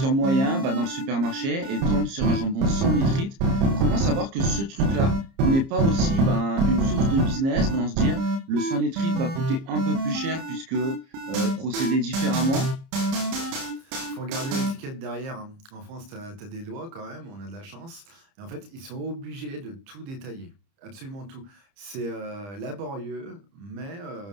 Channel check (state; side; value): late; left; 30 ms